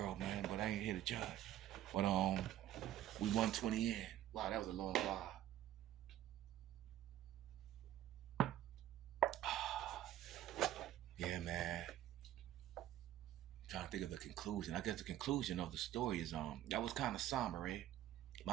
man, but I ain't here to judge. But we 120 in. Wow, that was a long while. Yeah, man. Trying to think of the conclusion. I guess the conclusion of the story is that was kind of somber, eh?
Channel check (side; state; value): left; quieter; 12.8 dB